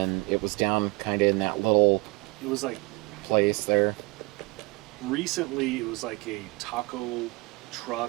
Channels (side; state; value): left; quieter; 24.6 dB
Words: it was down kind of in that little It was like place there. recently. It was like a taco